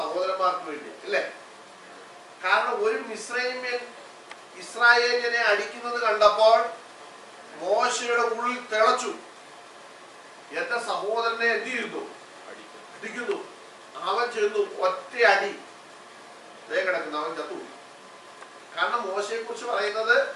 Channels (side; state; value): both; identical; correlation 1.00